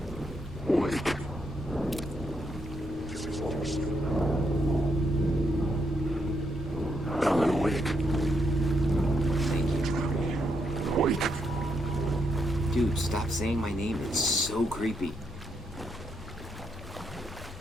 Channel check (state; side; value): normal; both; correlation 0.79